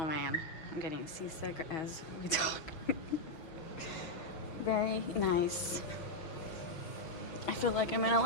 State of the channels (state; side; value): late; right; 6.1 ms